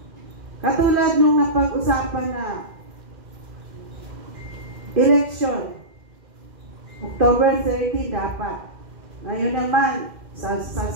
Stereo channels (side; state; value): left; late; 2.1 ms